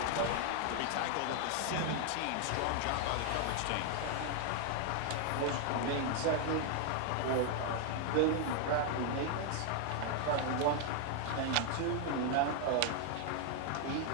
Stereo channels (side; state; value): both; different; correlation 0.00